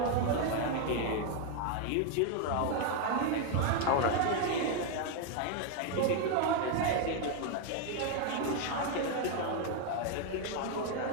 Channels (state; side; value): different; both; correlation 0.01